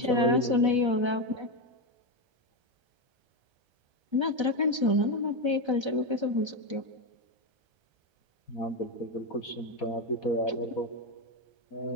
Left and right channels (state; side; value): late; left; 1.3 ms